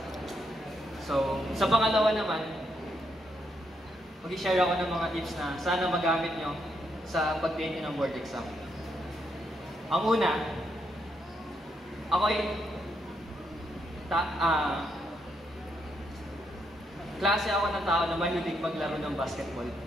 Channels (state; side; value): normal; both; correlation 0.78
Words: So, sa pangalawa naman, mag-share ako ng mga tips na sana magamit nyo sa pag-take ng board exam. Ang una, ako ay klase ako ng tao na mahilig maglaro ng basketball.